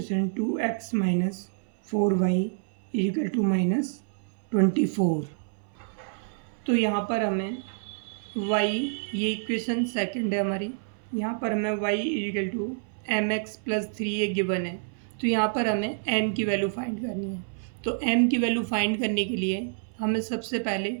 2x - 4y = -24। तो यहाँ पर हमें y, ये इक्वेशन सेकंड है हमारी, यहाँ पर हमें y = mx + 3a गिवन है। तो यहाँ पर हमें m की वैल्यू फाइंड करनी है। तो m की वैल्यू फाइंड करने के लिए हमें सबसे पहले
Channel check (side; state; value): left; silent; 59 dB below the other